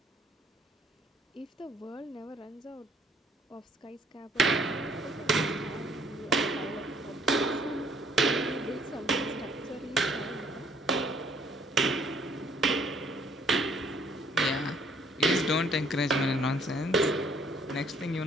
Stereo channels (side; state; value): both; normal; correlation 0.62